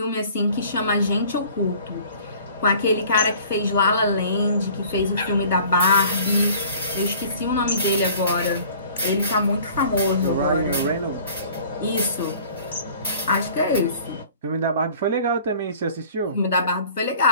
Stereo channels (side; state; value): both; inverted; correlation -0.49